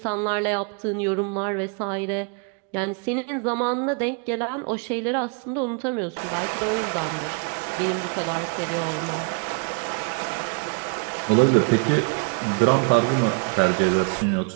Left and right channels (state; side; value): quieter; left; 36.5 dB